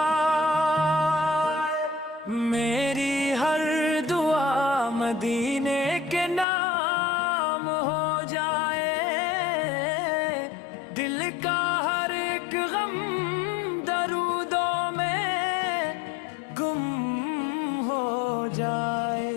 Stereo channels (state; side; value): drops out; right; at 6.5 s